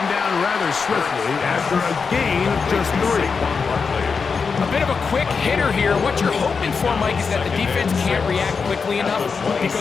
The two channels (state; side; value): quieter; right; 5.3 dB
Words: down rather swiftly after a gain of just 3. A bit of a quick hitter here. What you're hoping for, Mike, is that the defense can't react quickly enough